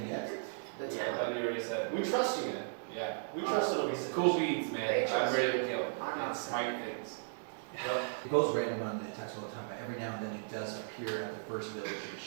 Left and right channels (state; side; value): silent; left; digital silence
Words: yet? The I town. thought you already said. We trust you. Yeah. We trust it'll be Cool beans, man. They I'm trust ready you. to kill. I'm not And smite things. Well, It goes random on the attacks all the time, but every now and then it does appear at the first village it